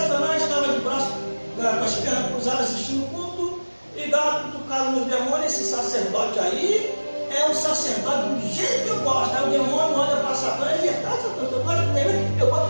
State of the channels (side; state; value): both; inverted; correlation -1.00